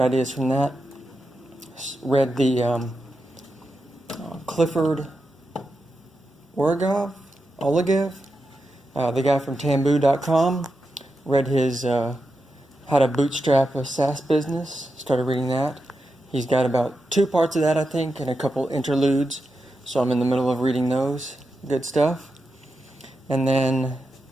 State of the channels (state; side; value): normal; both; correlation 0.88